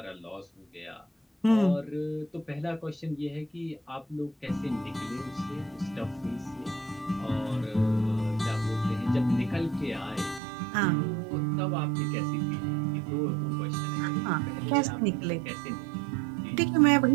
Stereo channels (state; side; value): drops out; left; at 10.4 s